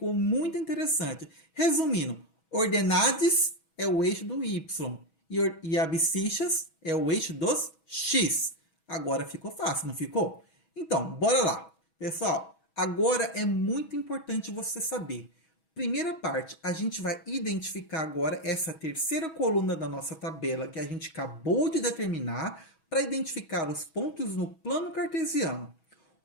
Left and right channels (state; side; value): late; right; 6.2 ms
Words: muito interessante. Resumindo, ordenadas é o eixo do Y. E abscissas é o eixo dos X. Agora ficou fácil, não ficou? Então, bora lá. Pessoal, agora é muito importante você saber. Primeira parte, a gente vai identificar agora essa terceira coluna da nossa tabela que a gente acabou de determinar para identificar os pontos no plano cartesiano.